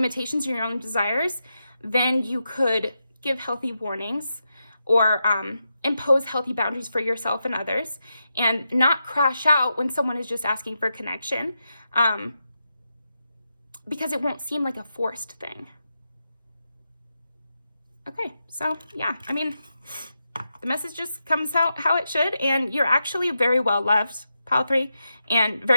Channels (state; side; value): inverted; both; correlation -0.87